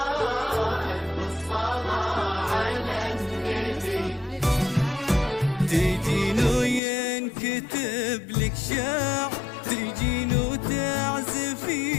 الصلاة على النبي. تجين وينكتب لك شعر، تجين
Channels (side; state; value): right; drops out; at 6.8 s